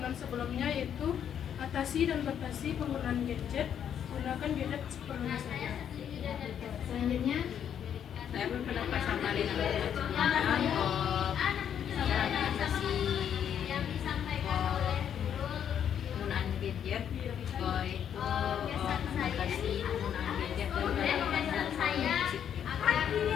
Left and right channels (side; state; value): right; quieter; 9.0 dB